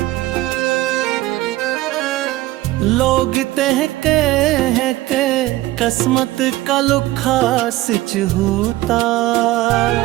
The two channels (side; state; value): left; quieter; 17.1 dB